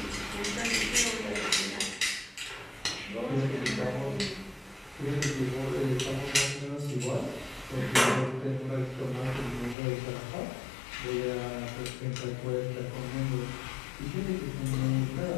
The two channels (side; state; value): right; drops out; at 9.8 s